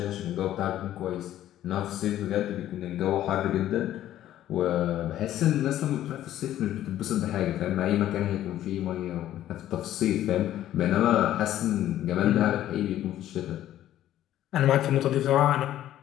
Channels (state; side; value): quieter; right; 12.6 dB